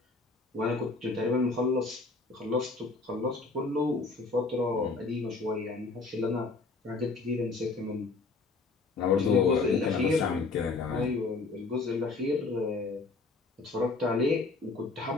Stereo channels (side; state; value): right; quieter; 3.9 dB